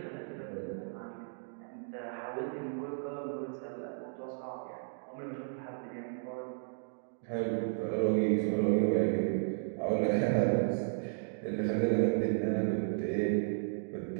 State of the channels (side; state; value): left; silent; digital silence